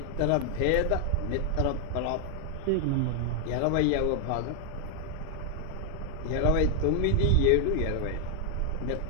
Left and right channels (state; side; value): different; both; correlation 0.00